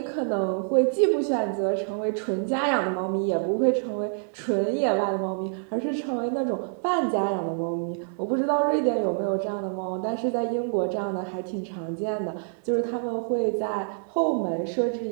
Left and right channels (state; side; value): silent; left; digital silence